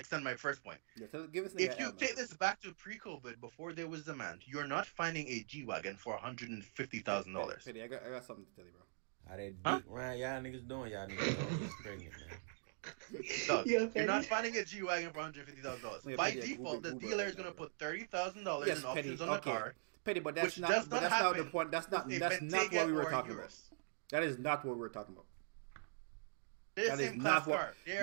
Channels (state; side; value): silent; left; digital silence